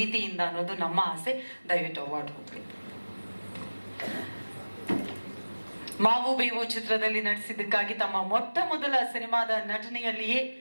ಅನ್ನೋದು ನಮ್ಮ ಆಸೆ. ದಯವಿಟ್ಟು ಅವಾರ್ಡ್ ಹೋಗ್ಬೇಕು. ಮಾವು ಬೇವು ಚಿತ್ರದಲ್ಲಿ ನಟಿಸಿದ್ದಕ್ಕಾಗಿ ತಮ್ಮ ಮೊಟ್ಟ ಮೊದಲ ಸಿನಿಮಾದ ನಟನೆಯಲ್ಲಿಯೇ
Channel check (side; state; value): both; inverted; correlation -1.00